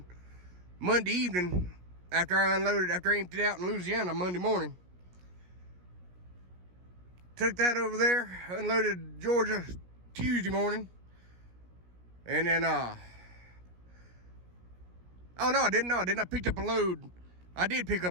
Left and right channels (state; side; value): late; left; 17 ms